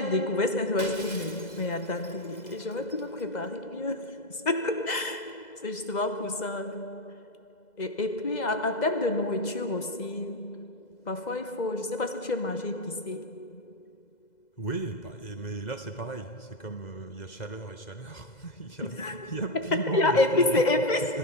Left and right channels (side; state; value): right; late; 2.0 ms